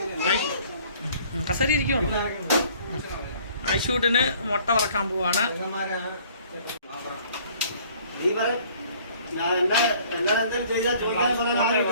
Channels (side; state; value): both; inverted; correlation -0.56